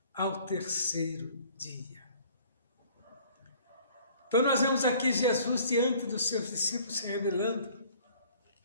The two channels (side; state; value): both; inverted; correlation -0.54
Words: ao terceiro dia. Então nós vemos aqui Jesus diante dos seus discípulos se revelando,